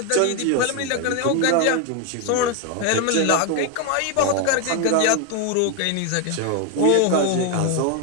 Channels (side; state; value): both; different; correlation 0.01